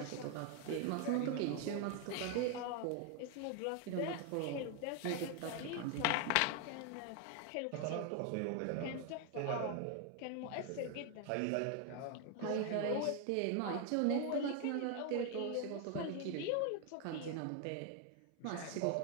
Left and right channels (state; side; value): different; both; correlation 0.01